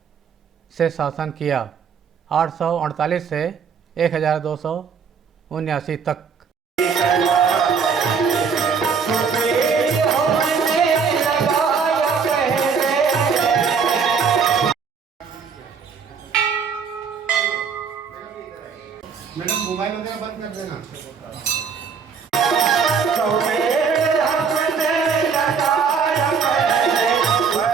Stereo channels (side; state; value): left; quieter; 6.1 dB